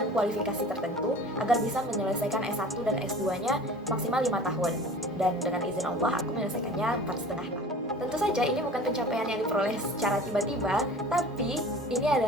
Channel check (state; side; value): normal; both; correlation 0.42